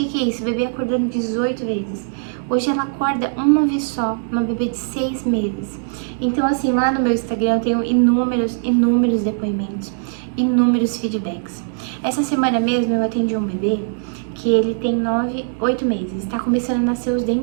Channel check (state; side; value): silent; left; digital silence